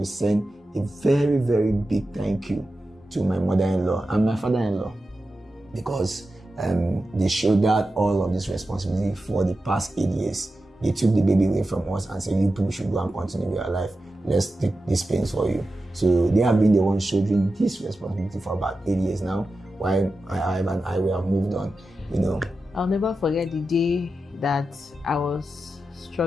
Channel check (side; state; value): both; normal; correlation 0.91